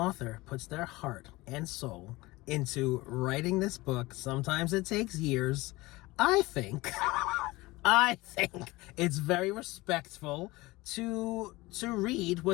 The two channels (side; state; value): right; quieter; 20.9 dB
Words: puts their heart and soul into writing this book, sometimes it takes years, I think it's very respectful to read